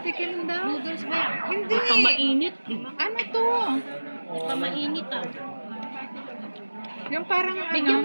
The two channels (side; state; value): both; inverted; correlation -1.00